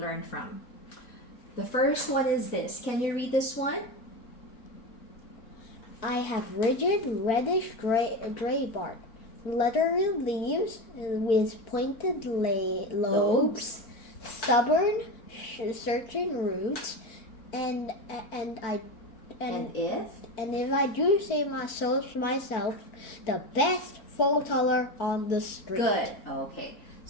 from. The first one is this. Can you read this one? I have rigid, reddish gray bark, leathery leaves with pointed lobes, stubborn, searching roots, and if I do say myself, the best photoler on the street. Good. Okay.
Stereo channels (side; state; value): right; late; 4.5 ms